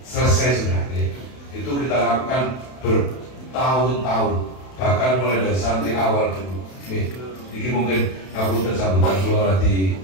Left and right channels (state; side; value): late; right; 32 ms